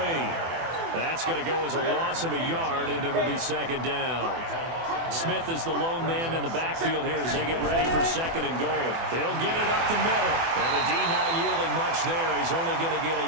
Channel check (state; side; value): late; left; 24 ms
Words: That's going to go as a loss of a yard, and it'll be 2nd down. Smith is the lone man in the backfield here as they get ready for 2nd and goal. He'll get it up the middle. And the D not yielding much there. He's only going to get a